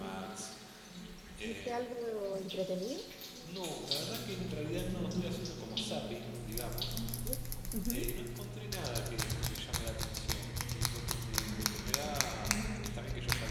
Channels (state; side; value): identical; both; correlation 1.00